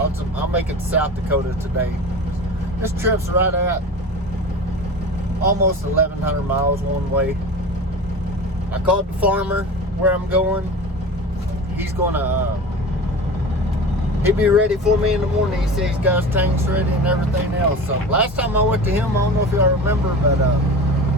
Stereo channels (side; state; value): both; normal; correlation 0.32